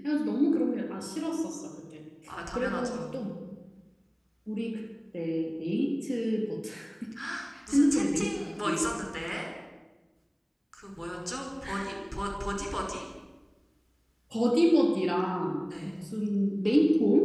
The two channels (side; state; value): both; identical; correlation 1.00